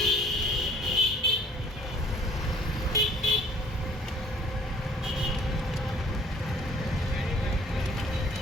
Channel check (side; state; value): both; normal; correlation 0.57